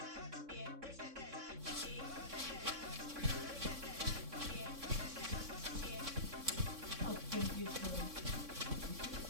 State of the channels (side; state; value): left; late; 3.6 ms